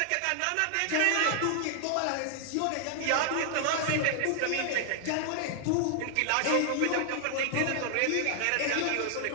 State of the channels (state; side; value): different; both; correlation 0.00